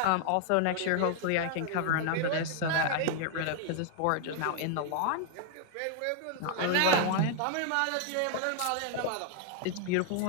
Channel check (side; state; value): both; different; correlation 0.00